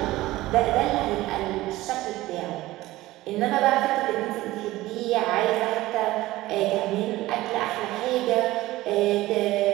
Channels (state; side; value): quieter; left; 17.4 dB